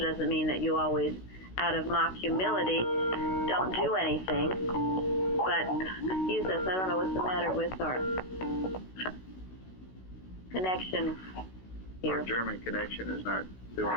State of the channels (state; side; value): late; right; 16 ms